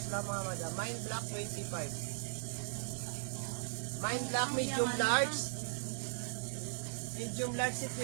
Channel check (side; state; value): left; silent; digital silence